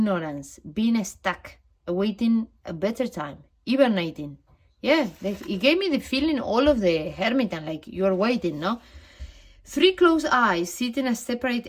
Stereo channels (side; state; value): both; identical; correlation 1.00